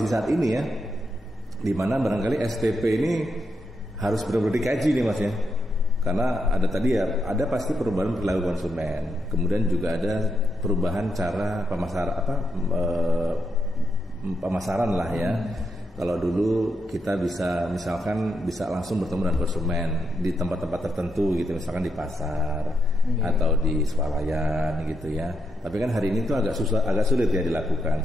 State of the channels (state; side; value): normal; both; correlation 0.82